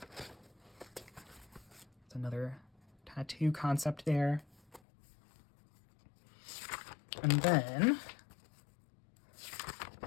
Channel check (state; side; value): drops out; right; at 4.8 s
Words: Another tattoo concept there. And then